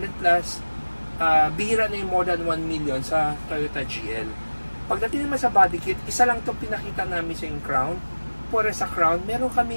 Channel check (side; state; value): both; inverted; correlation -1.00